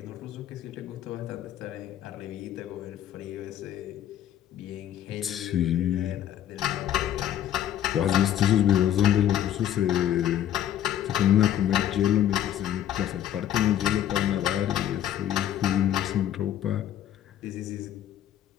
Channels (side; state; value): right; quieter; 11.3 dB